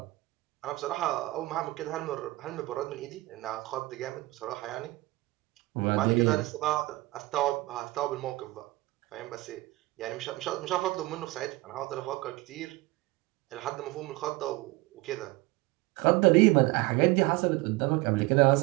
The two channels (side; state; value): left; quieter; 20.7 dB